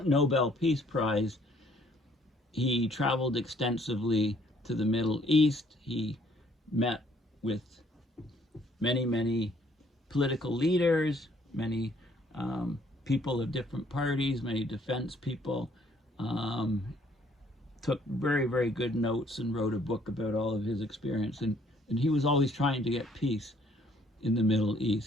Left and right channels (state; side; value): normal; both; correlation 0.63